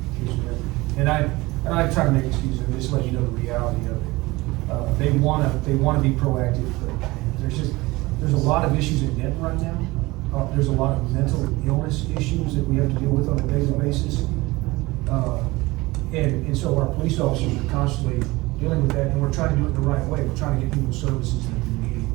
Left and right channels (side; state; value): left; quieter; 21.2 dB